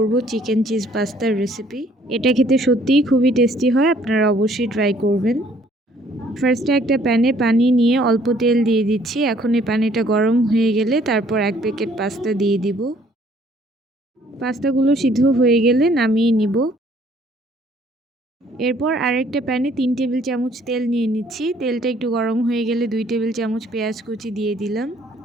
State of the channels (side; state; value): both; normal; correlation 0.61